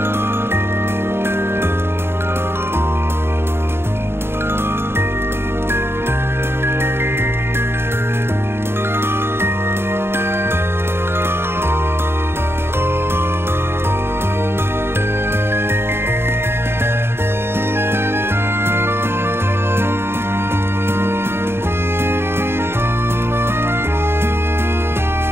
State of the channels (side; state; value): left; late; 0.11 ms